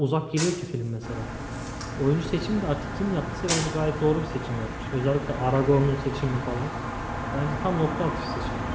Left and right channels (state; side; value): identical; both; correlation 1.00